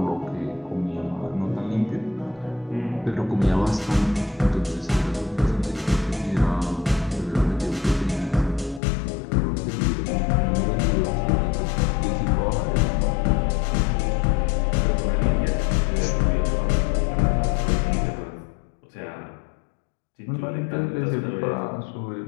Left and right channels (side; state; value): right; drops out; at 8.8 s